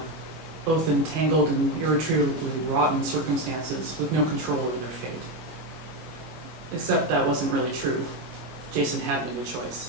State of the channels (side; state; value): left; late; 24 ms